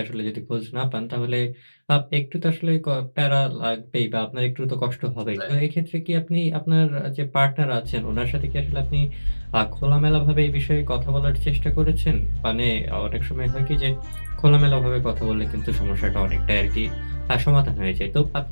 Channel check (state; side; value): inverted; both; correlation -1.00